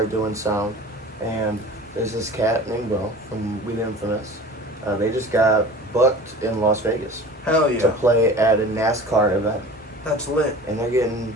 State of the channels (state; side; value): normal; both; correlation 0.39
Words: doing sound, and there's this cat named Will from We the Infamous. They just got booked in Las Vegas Hell yeah, to play at a NASCAR event, that's lit. and they're getting